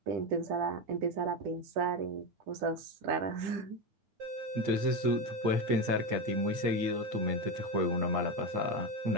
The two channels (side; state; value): left; late; 8.7 ms